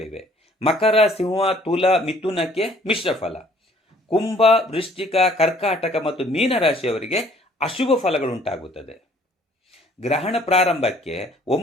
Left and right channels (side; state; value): both; normal; correlation 0.59